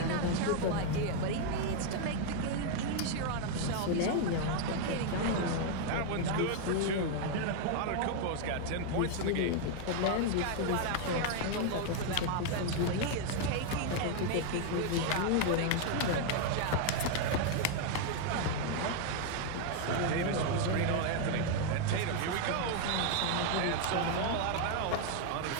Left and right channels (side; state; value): both; different; correlation 0.00